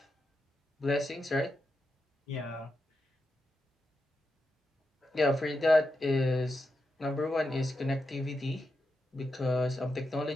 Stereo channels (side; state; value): both; normal; correlation 0.87